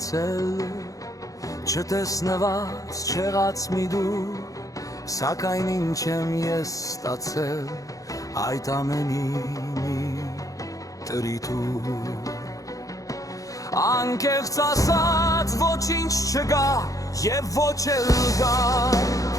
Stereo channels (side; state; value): right; late; 0.17 ms